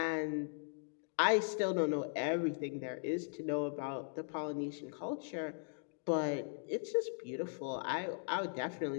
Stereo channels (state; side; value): silent; right; digital silence